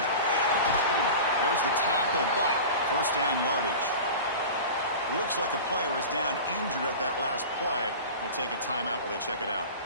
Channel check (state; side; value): inverted; both; correlation -0.33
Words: There's the tackle, but 1st down yardage. Looks like a player is down injured at that last play. We'll take a timeout while they check it out.